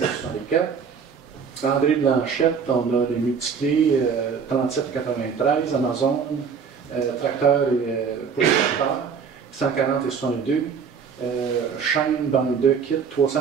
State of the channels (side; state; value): left; quieter; 6.3 dB